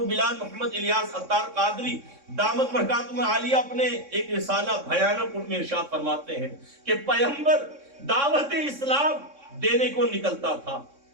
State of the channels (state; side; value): late; left; 3.6 ms